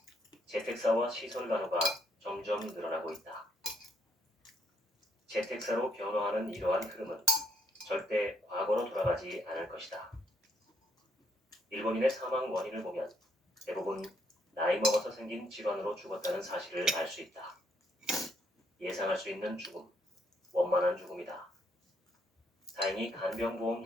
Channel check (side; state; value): both; normal; correlation 0.72